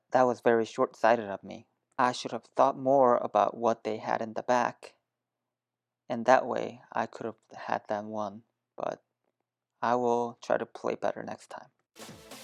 that was very short-sighted of me. I should have thought more about what they had in the back, and that way I could have had them won, but I will try to play better next time.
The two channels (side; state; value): both; identical; correlation 1.00